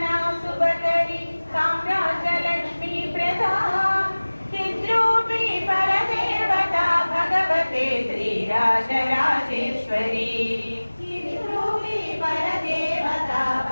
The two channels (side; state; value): both; inverted; correlation -1.00